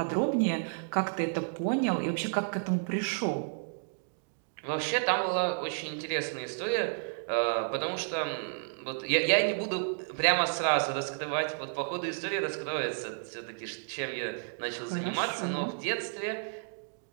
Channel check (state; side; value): silent; left; digital silence